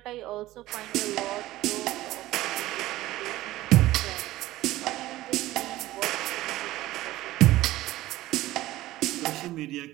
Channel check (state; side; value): quieter; left; 16.4 dB